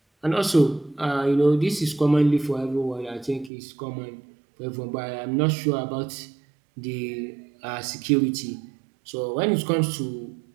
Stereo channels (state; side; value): drops out; left; at 3.5 s